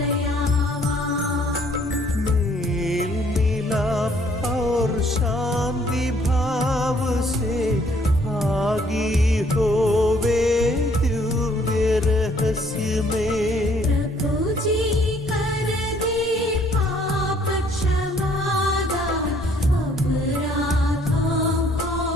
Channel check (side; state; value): both; normal; correlation 0.63